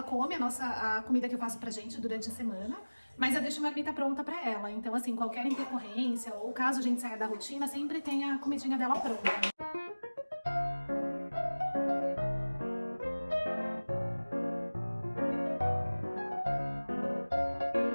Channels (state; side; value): inverted; both; correlation -1.00